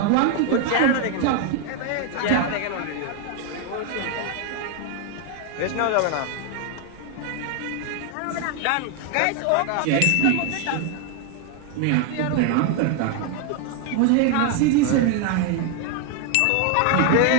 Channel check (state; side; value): different; both; correlation 0.01